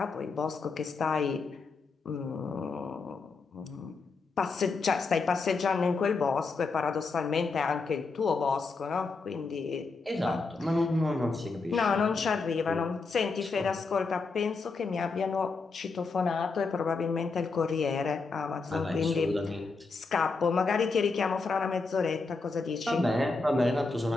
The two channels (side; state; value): right; quieter; 4.2 dB